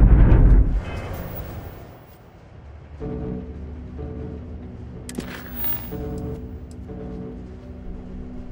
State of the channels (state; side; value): identical; both; correlation 1.00